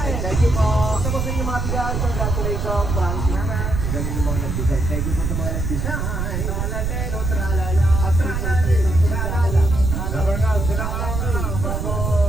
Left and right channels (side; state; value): right; noise; rumble, 2 dB below the sound